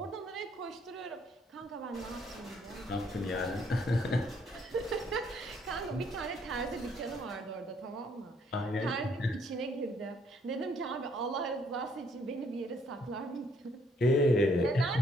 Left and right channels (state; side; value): normal; both; correlation 0.67